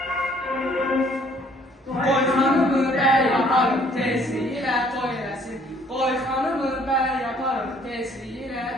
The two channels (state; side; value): normal; both; correlation 0.60